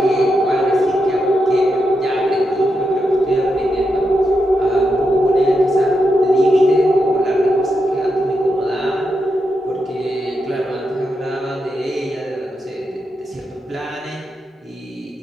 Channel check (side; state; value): both; normal; correlation 0.85